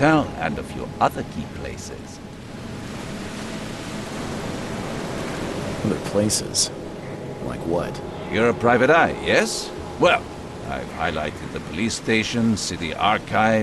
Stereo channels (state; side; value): identical; both; correlation 1.00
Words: and a few other key places. Other places? Like what? You're a private eye, yes? Well, I've highlighted the police station, city